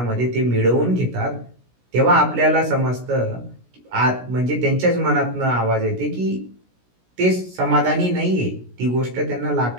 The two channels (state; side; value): late; left; 16 ms